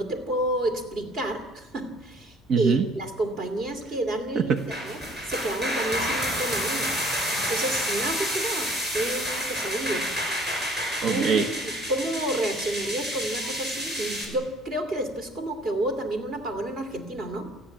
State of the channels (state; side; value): normal; both; correlation 0.56